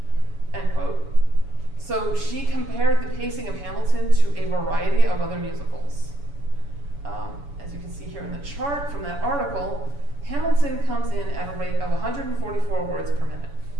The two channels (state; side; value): late; left; 7.0 ms